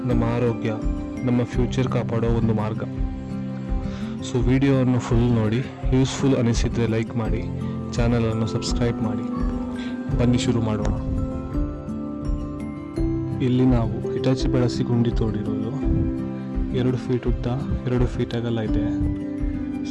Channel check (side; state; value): both; identical; correlation 1.00